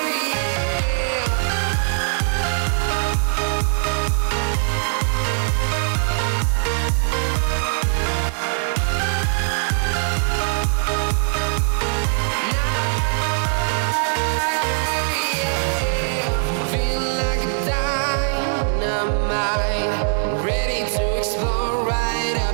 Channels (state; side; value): silent; left; 65 dB below the other